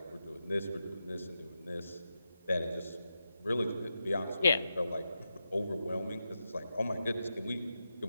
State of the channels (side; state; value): both; inverted; correlation -0.88